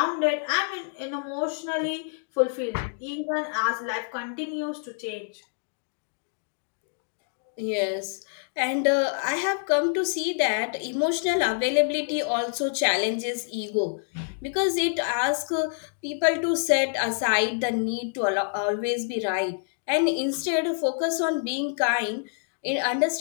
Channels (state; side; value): silent; right; digital silence